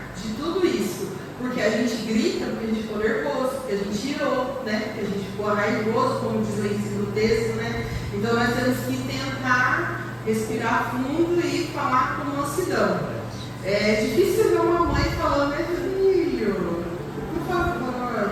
de tudo isso. Porque a gente grita, porque a gente ficou nervoso, porque a gente irou, né? Porque a gente ficou raivoso, como diz o ensino do texto, né? Então nós temos que tentar respirar fundo e falar com mansidão. É difícil ver uma mãe falando, meu filho, por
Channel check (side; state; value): both; identical; correlation 1.00